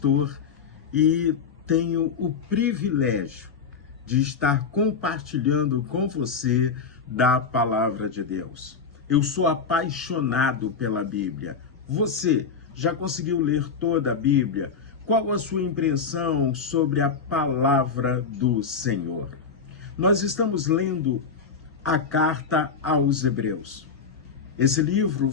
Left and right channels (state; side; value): quieter; right; 5.5 dB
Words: e tenho o privilégio de estar compartilhando com você da Palavra de Deus. Eu sou apaixonado pela Bíblia. Você já conseguiu ler toda a Bíblia? Qual a sua impressão sobre a Palavra do Senhor? Nós estamos lendo a Carta aos Hebreus. Esse livro